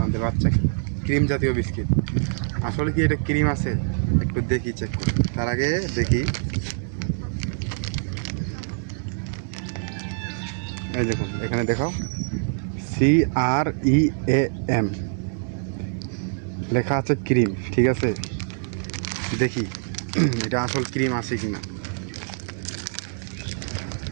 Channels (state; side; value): silent; left; 60 dB below the other